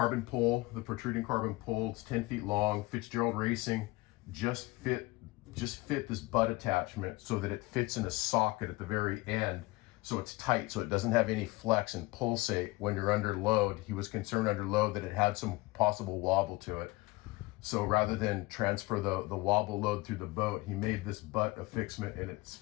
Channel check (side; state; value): right; quieter; 21.9 dB